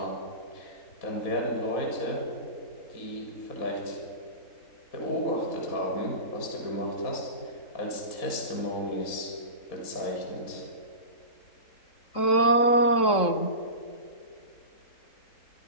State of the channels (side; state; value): right; late; 3.7 ms